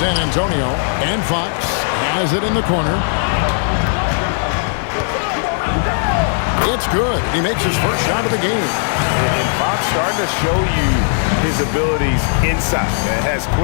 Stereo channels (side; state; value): right; silent; 68 dB below the other